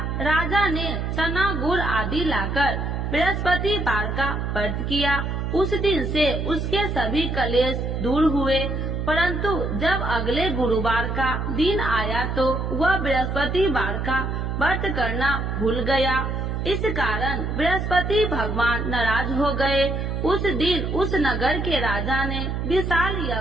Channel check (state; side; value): noise; right; hum, 2 dB below the sound